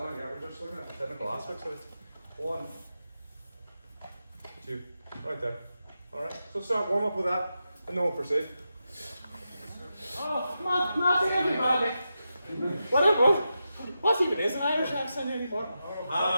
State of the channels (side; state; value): both; inverted; correlation -0.89